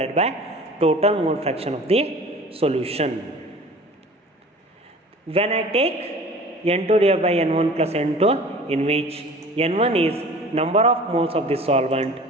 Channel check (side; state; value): both; normal; correlation 0.44